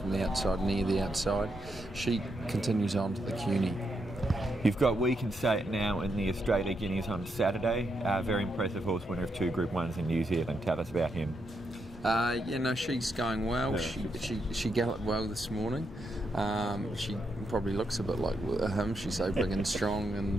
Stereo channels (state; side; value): normal; both; correlation 0.81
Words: the outside, near the outside. She continues on to the CUNY. You've got We Can Say It Now in the Australian Guineas on Saturday. Very impressive horse, winner of 2 Group 1s in New Zealand. Tell us about him. She's going well. She galloped well this morning. She probably looks a bit like him. She's so big and strong,